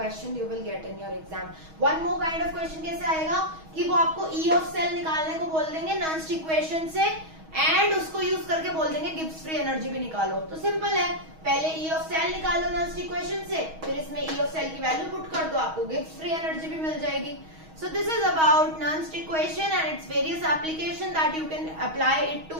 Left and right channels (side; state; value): left; late; 6.3 ms